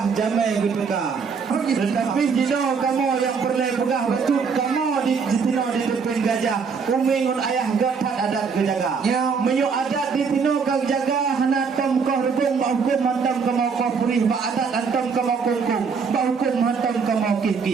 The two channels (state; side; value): quieter; left; 5.6 dB